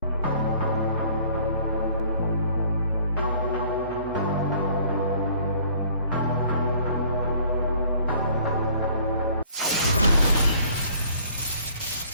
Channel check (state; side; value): inverted; both; correlation -0.56